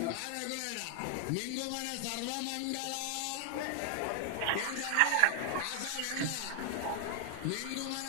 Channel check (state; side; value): different; both; correlation 0.00